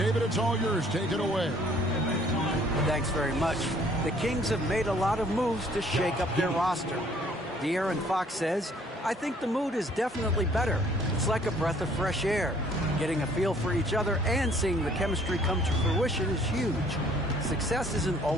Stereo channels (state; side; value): normal; both; correlation 0.59